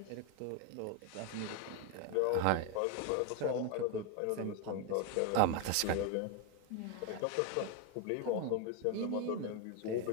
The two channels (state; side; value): different; both; correlation 0.01